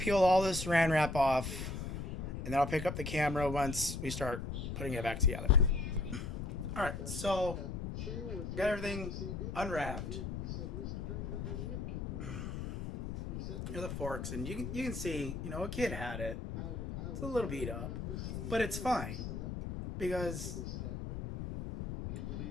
peel all this Saran wrap off, and then I'll pick up the camera once we start putting it back together. All right, so got everything unwrapped. Here's the forks, and you can see, you know, a kid had it. It's a little beat up, but it's fine because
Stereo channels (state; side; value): noise; left; rumble, 5 dB below the sound